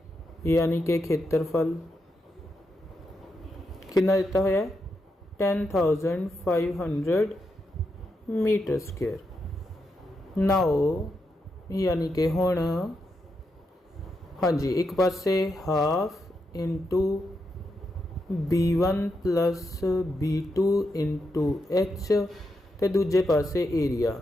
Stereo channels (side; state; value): both; normal; correlation 0.84